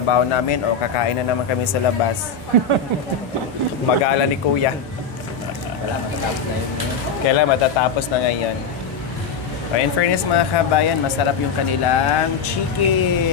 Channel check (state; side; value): quieter; right; 5.6 dB